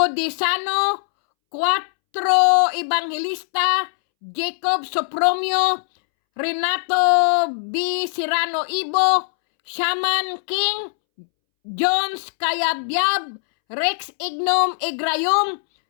4 Evangelista, Jacob Sopromio, Renato B. Serrano Ibo, Shaman King, Jones Kayabyab, Rex Ignom Igrayom,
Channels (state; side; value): silent; right; 65 dB below the other